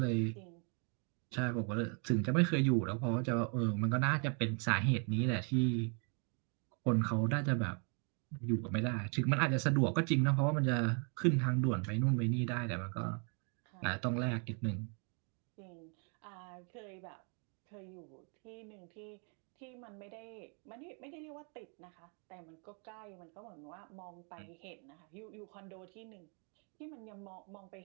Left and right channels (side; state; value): left; quieter; 38.6 dB